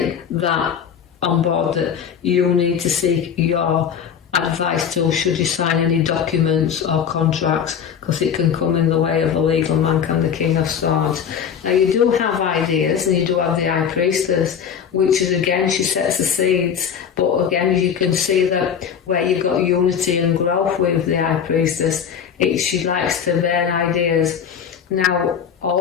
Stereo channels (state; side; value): quieter; right; 7.8 dB